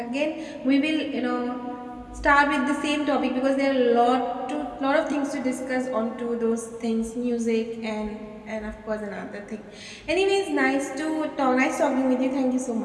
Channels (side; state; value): both; identical; correlation 1.00